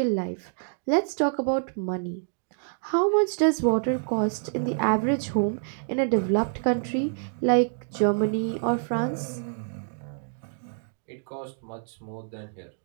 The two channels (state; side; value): silent; left; digital silence